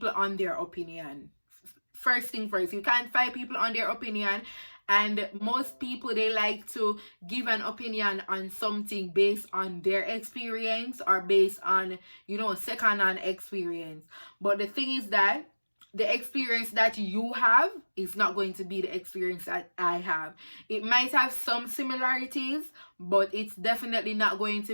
on their opinion. First thing first, you can't fight people on their opinion. And most people, they like to give an opinion on something based on their experience or based on, second-hand experience. But the thing is that the experience that you have is not going to be the experience that I have. It might have some similarities, but it's definitely not going to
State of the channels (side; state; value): both; inverted; correlation -1.00